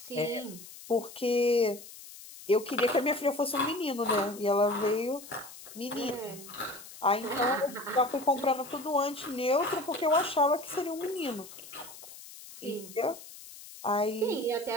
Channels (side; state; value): left; noise; hiss, 16 dB below the sound